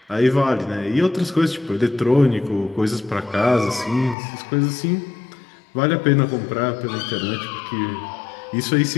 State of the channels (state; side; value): drops out; right; at 4.2 s